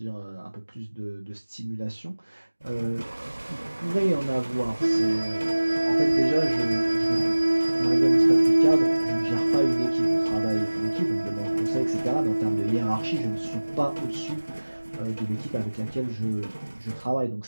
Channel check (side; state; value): both; inverted; correlation -1.00